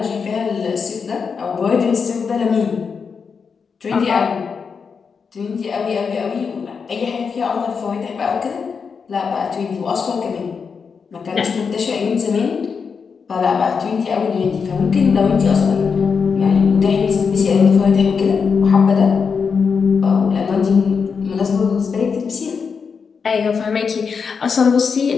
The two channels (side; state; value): right; quieter; 5.8 dB